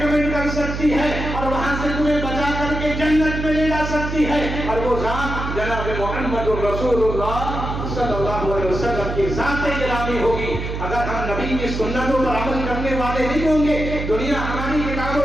کر سکتی ہے، اور وہاں سے تمہیں بچا کر کے جنت میں لے جا سکتی ہے. اور وہ ذات جناب محمد رسول اللہ صلی اللہ علیہ وسلم کی ذات گرامی ہوگی. اگر ہم نبی کی سنتوں پر عمل کرنے والے نہیں ہوں گے، دنیا ہماری کتاب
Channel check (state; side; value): noise; right; hum, 5 dB below the sound